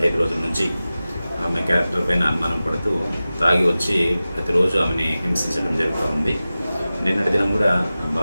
రోజుల నుంచి ఆమె క్యారెక్టర్ పైన అనుమానం పడుతూ తాగి వచ్చి ప్రతిరోజు ఆమెని హింసించడం జరుగుతూ ఉంది. నిన్నటి దినం కూడా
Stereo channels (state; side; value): inverted; both; correlation -0.96